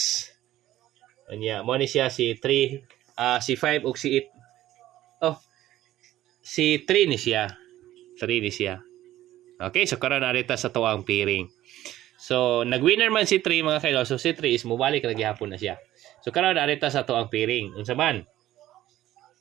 Anya mo ni siya si 3, si 5 ug si 8. Oh. Si 3 ni siya. 3 ni siya. Okay, so karon arita sa tuwang piring. So nag-winner man si 3 mga kaidol. So si 3 is mobalik ra gihapon na siya. So karon arita sa tuwang piring. Unsa man?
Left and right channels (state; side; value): quieter; left; 14.2 dB